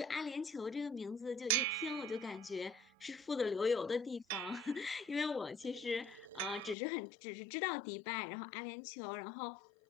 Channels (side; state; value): right; drops out; at 6.8 s